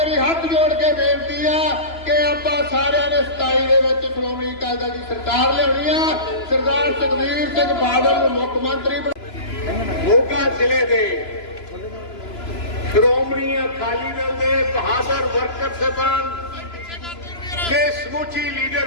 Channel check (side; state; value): right; late; 2.9 ms